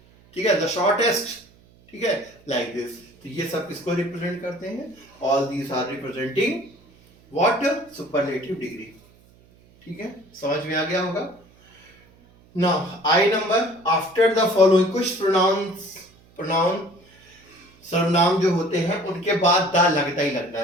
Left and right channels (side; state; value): right; noise; hum, 29 dB below the sound